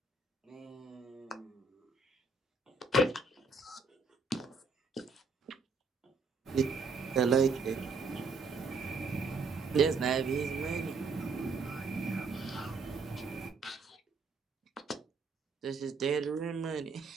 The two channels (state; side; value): quieter; left; 4.1 dB